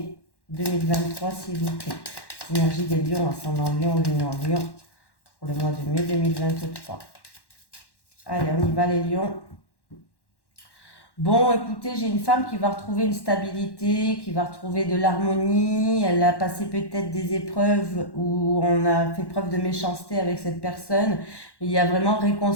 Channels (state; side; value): late; right; 1.1 ms